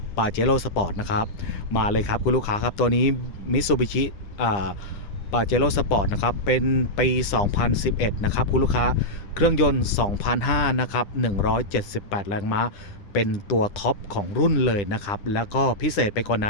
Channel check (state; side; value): late; right; 9.9 ms